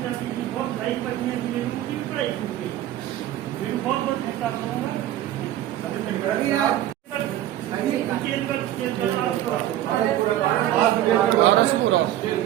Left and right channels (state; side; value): quieter; left; 13.0 dB